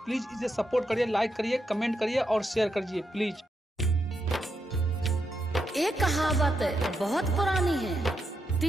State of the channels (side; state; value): both; normal; correlation 0.83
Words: प्लीज़ इसे सपोर्ट करिए, लाइक करिए, कमेंट करिए और शेयर करिए प्लीज़। एक कहावत बहुत पुरानी है,